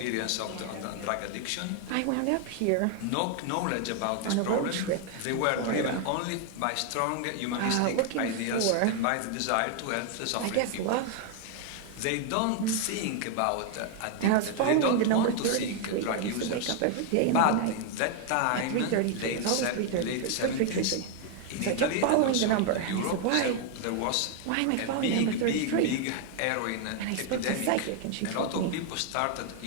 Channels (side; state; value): both; different; correlation 0.00